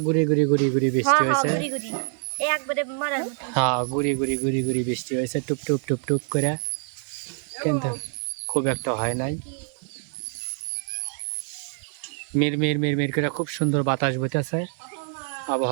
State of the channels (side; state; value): left; silent; 56 dB below the other